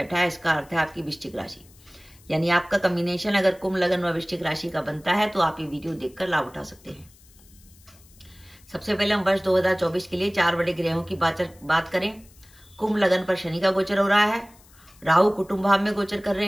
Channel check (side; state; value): left; noise; hiss, 27 dB below the sound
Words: है, इसका अर्थ है आपकी वृश्चिक राशि। यानी आपका कॉम्बिनेशन अगर कुंभ लगन व वृश्चिक राशि का बनता है तो आप ये वीडियो देखकर लाभ उठा सकते हैं। सबसे पहले हम वर्ष 2024 के लिए 4 बड़े ग्रहों की बात करें। कुंभ लगन पर शनि का गोचर हो रहा है। राहु कुटुंब भाव में गोचर कर रहे